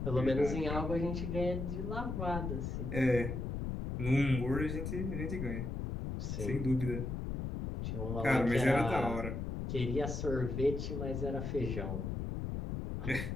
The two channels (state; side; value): noise; left; rumble, 3 dB below the sound